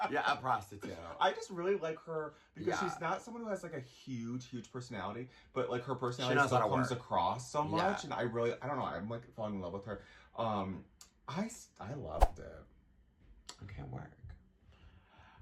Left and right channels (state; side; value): identical; both; correlation 1.00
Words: Yeah, a prostitute. I just really like her because she's not someone who has like a huge huge personality, but like her personality still comes across so much, and I don't know, I'm like falling in love with her. I loved it. Okay, work.